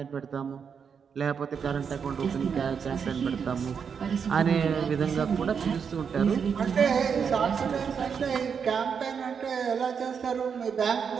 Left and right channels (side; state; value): left; quieter; 6.6 dB